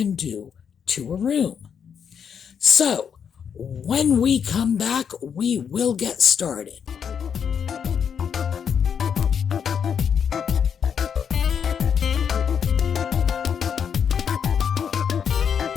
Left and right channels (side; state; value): right; quieter; 7.4 dB